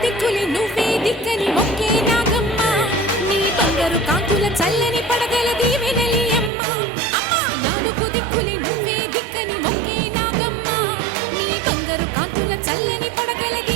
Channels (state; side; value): drops out; left; at 6.5 s